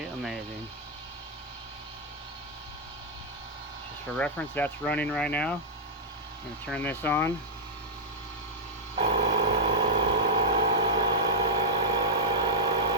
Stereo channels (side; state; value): both; normal; correlation -0.07